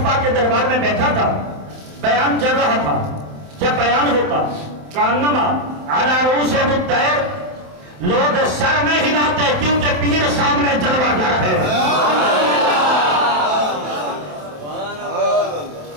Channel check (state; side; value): late; left; 27 ms